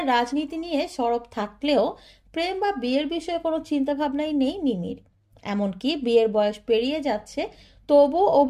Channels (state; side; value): identical; both; correlation 1.00